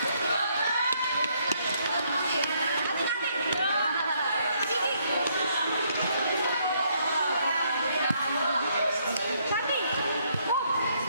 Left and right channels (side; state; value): both; inverted; correlation -0.71